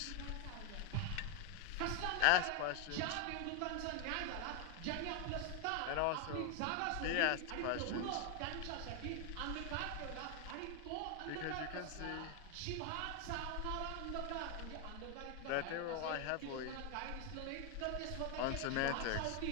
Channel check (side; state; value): both; different; correlation 0.01